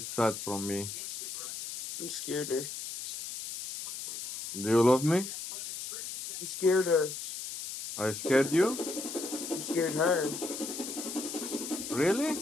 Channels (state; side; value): noise; left; hiss, 7 dB below the sound